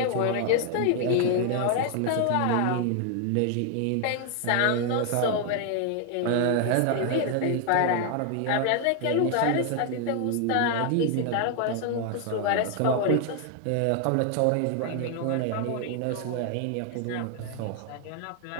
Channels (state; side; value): different; both; correlation 0.00